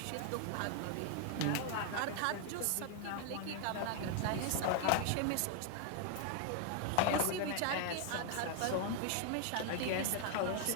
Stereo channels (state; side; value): different; both; correlation 0.00